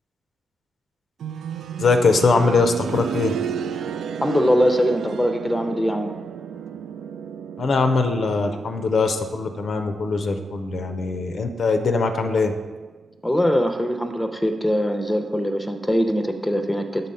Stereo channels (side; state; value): both; normal; correlation 0.85